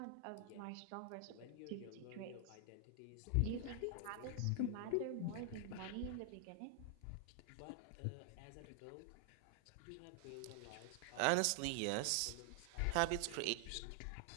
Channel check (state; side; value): different; both; correlation 0.00